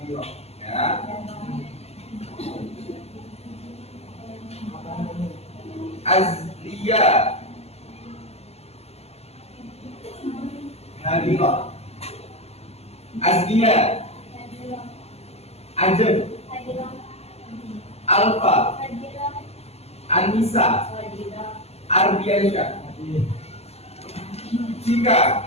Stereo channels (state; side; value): late; right; 0.30 ms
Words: ya. Azlia. Hadiroh. Azlia. Ajen. Alfa. Anissa, Ardiansyah,